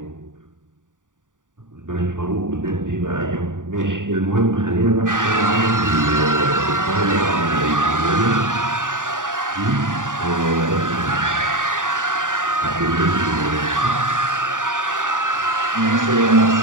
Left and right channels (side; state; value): left; late; 0.87 ms